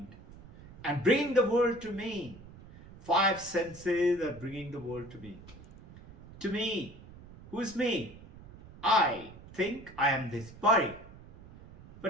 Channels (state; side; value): noise; right; rumble, 19 dB below the sound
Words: and bringing the world to me. Five senses are bringing the world to me. To me. Who's me? I think I am this body.